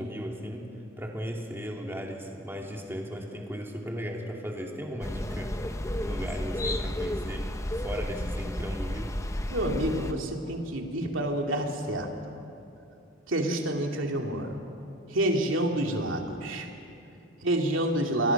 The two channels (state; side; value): normal; both; correlation 0.42